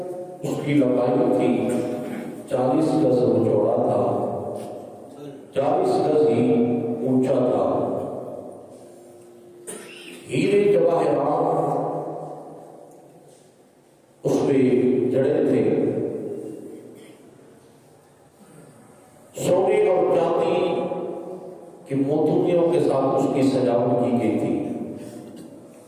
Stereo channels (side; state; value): both; identical; correlation 1.00